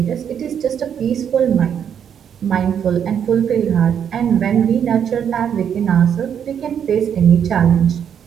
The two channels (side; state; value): left; quieter; 8.4 dB